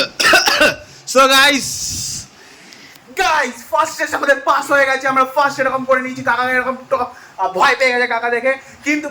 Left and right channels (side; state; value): both; identical; correlation 1.00